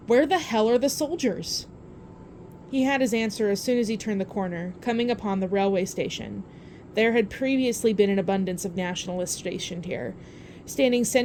Where the hell are the soldiers? He had his answer as soon as he turned the corner, coming upon the railway station. There had previously been an abundance of nationalists stationed here, standing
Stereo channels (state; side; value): identical; both; correlation 1.00